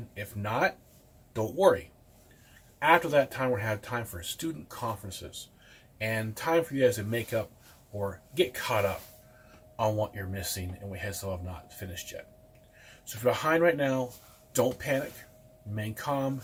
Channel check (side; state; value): both; identical; correlation 1.00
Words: If not, don't worry. After that time, we're going to have time for student conferences and time for you guys to make up or get caught up on what you're missing and we still have not finished yet. So if you're behind right now, don't panic, remain calm,